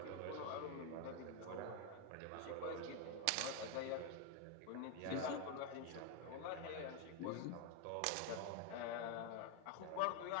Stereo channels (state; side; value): different; both; correlation 0.01